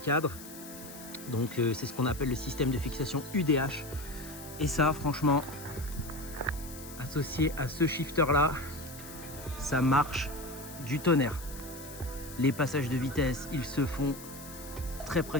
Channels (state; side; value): noise; left; hiss, 15 dB below the sound